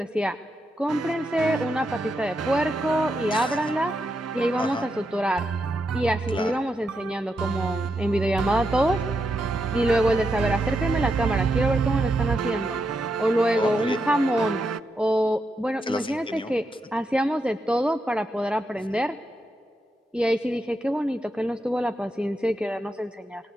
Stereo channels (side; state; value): both; normal; correlation 0.83